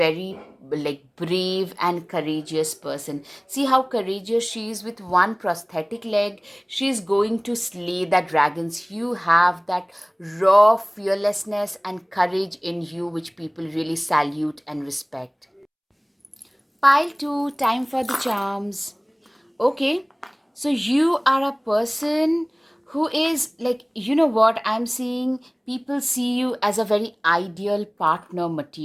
like brave and courageous person. See how courageous she is. With one prosthetic leg, she is going to slay the dragons. You have that raw fearlessness and courage in you, which people really salute and respect. Pile 2, time for the charms. Okay, so you are a person who is like, you know what, I'm seeing people see you as a very ideal partner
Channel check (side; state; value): both; identical; correlation 1.00